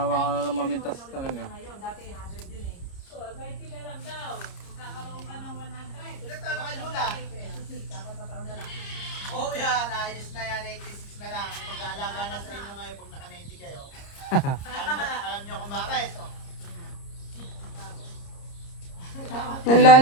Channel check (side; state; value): right; late; 30 ms